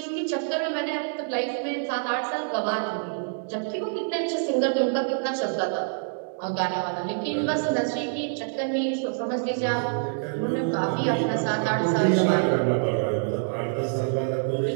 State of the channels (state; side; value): silent; left; digital silence